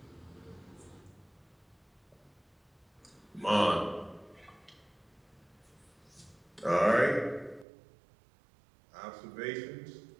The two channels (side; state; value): left; drops out; at 7.7 s